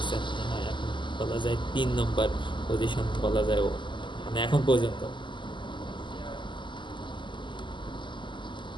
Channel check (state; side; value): late; right; 0.23 ms